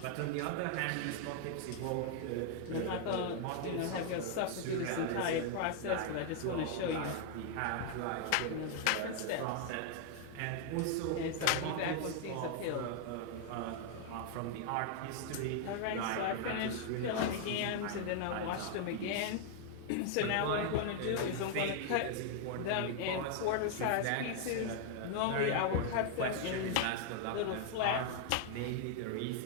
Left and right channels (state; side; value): different; both; correlation 0.00